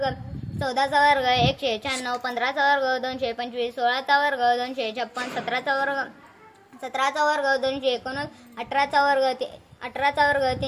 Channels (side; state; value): both; identical; correlation 1.00